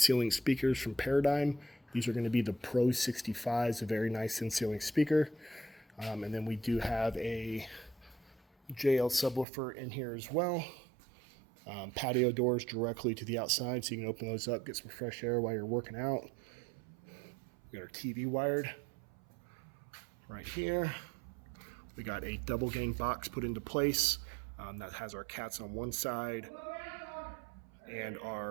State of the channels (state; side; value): drops out; left; at 9.5 s